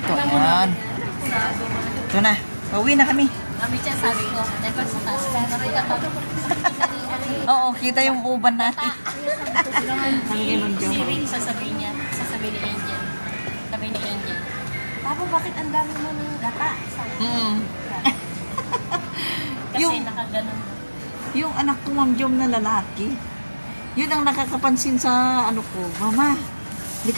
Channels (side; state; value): both; inverted; correlation -1.00